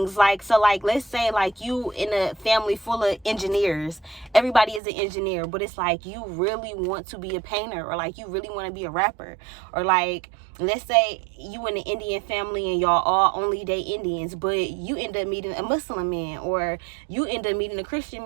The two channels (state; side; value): drops out; left; at 4.8 s